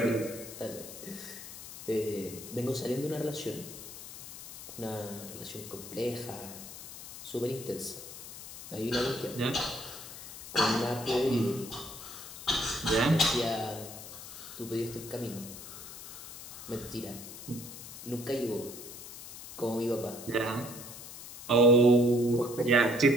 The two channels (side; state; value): left; noise; hiss, 13 dB below the sound